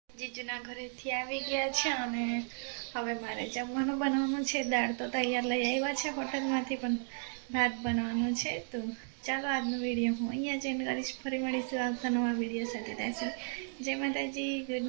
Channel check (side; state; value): left; silent; 55 dB below the other